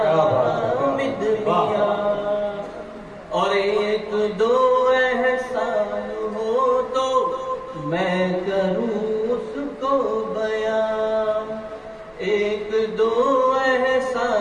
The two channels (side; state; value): both; identical; correlation 1.00